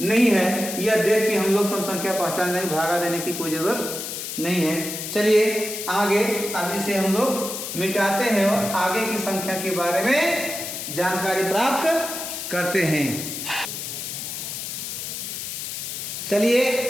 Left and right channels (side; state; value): left; noise; hiss, 6 dB below the sound